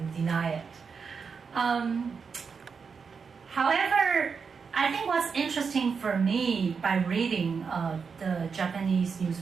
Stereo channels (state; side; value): quieter; left; 5.6 dB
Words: deny it. However, I think what's interesting for me by reading the Japanese